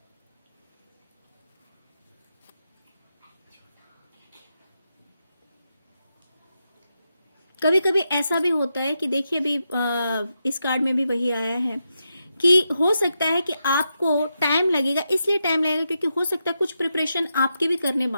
कभी कभी ऐसा भी होता है कि देखिए अभी इस कार्ड में भी वही आया है कि हो सकता है कि आपको टाइम लगेगा, इसलिए टाइम लगेगा क्योंकि हो सकता है कुछ प्रिपरेशन आपके भी करने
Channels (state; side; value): inverted; both; correlation -0.86